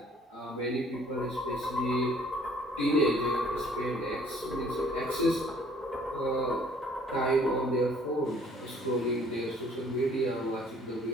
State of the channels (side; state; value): both; normal; correlation 0.58